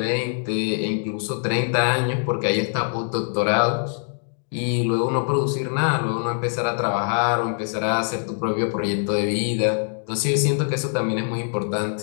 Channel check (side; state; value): right; silent; 57 dB below the other